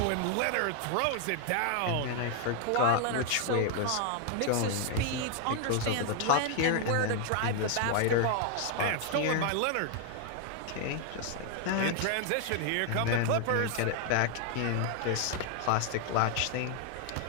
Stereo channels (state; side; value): different; both; correlation 0.00